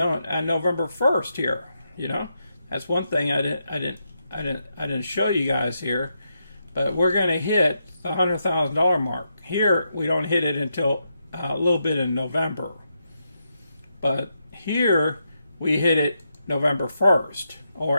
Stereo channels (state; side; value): inverted; both; correlation -0.83